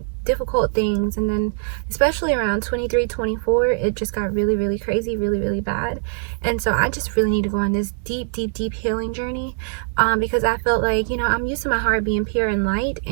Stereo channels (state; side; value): silent; left; 64 dB below the other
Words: difficult things. And then especially around 23, 24, it just got really, really crazy, really, really bad. And so I just really need to go on this deep, deep, deep healing journey because I felt like, I'm used to my heart being pure and light,